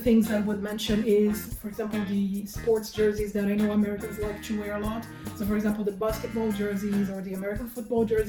I would mention is, for example, the sports jerseys that I know Americans like to wear a lot. So for example, the basketball jerseys or the American football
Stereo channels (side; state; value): both; identical; correlation 1.00